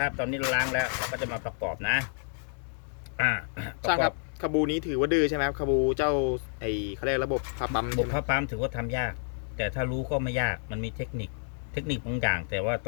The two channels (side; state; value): right; silent; digital silence